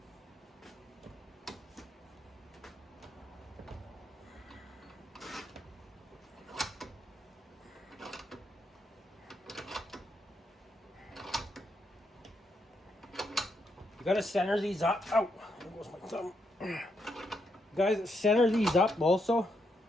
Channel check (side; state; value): both; normal; correlation 0.79